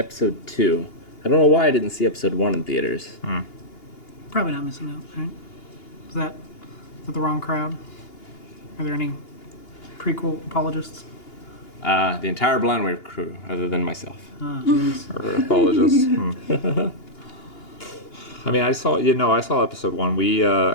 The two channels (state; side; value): late; right; 2.8 ms